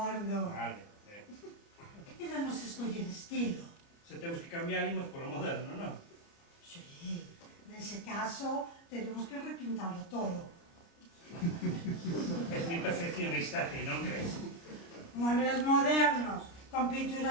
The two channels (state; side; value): late; right; 29 ms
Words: Vale. Quédanos escoller estilo. Se temos que cambiar, imos polo moderno, non? Sí, nese caso, tenemos que repintarlo todo. Es mi perfeccionista, ti, non crees? Muebles modernos, con